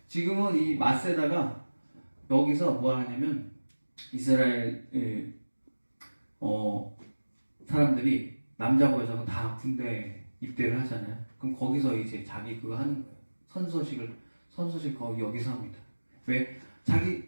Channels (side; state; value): both; inverted; correlation -1.00